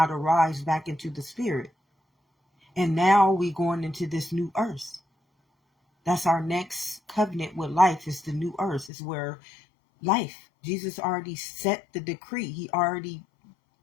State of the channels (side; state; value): right; drops out; at 8.9 s